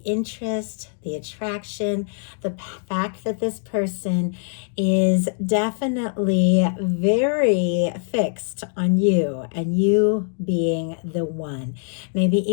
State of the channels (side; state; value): right; silent; digital silence